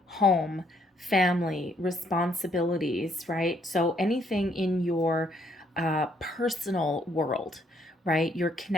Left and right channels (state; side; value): normal; both; correlation 0.69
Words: home, family, responsibilities, right? So anything in your personal world, right? Your